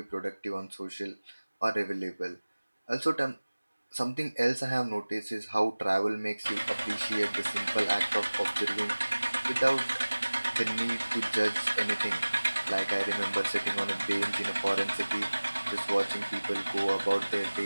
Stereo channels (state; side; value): inverted; both; correlation -1.00